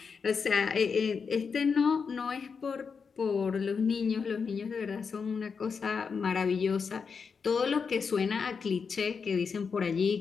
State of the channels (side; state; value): right; quieter; 5.6 dB